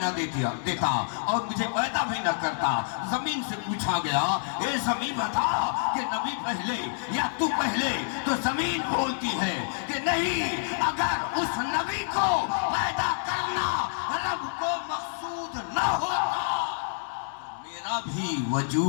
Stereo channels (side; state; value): right; silent; 60 dB below the other